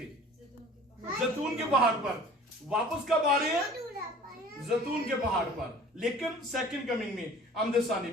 जैतून के पहाड़ पर। वापस कब आ रहे हैं? जैतून के पहाड़ पर। लेकिन सेकंड कमिंग में, आमदे सानी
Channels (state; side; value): normal; both; correlation 0.46